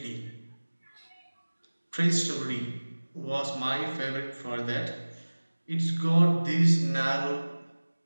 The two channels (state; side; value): inverted; both; correlation -1.00